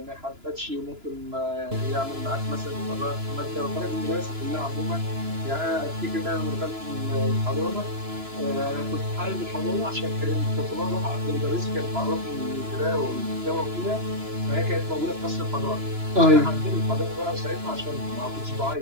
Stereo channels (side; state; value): left; late; 2.9 ms